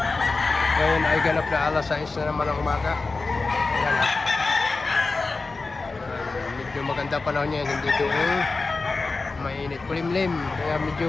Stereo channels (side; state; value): right; quieter; 3.8 dB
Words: Ngayon ay ganap na alas 6 na naman ng umaga. Ayan ah. Medyo maganda panahon niya, hindi doon mainit. Kulimlim, kaya medyo